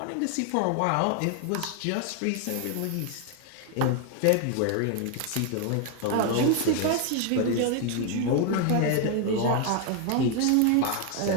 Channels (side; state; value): both; different; correlation 0.00